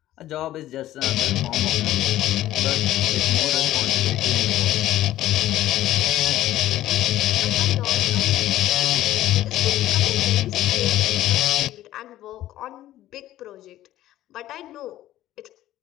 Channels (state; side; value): quieter; right; 14.1 dB